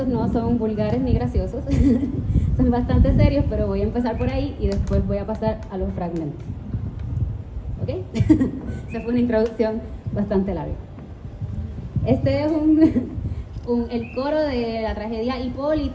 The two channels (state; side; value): identical; both; correlation 1.00